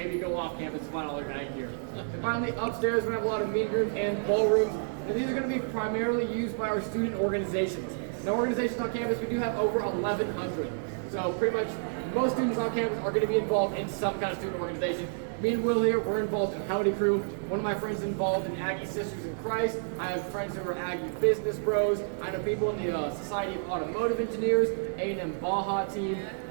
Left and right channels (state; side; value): silent; left; digital silence